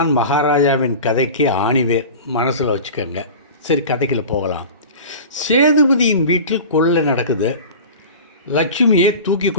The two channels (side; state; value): both; inverted; correlation -0.34